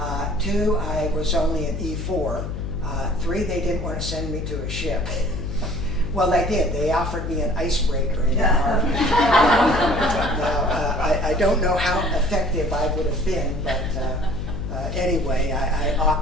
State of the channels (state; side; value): noise; left; hum, 5 dB below the sound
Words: 2, I was only an E4. 3, they didn't want to send me to a ship. Well, they did. They offered me an icebreaker in the Army. Now, I don't know how effective I would have been, but anyway, I